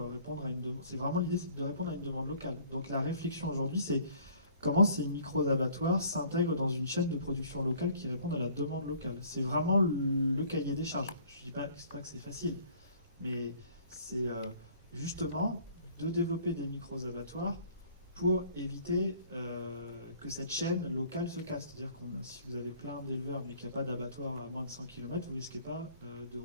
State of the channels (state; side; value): inverted; both; correlation -0.55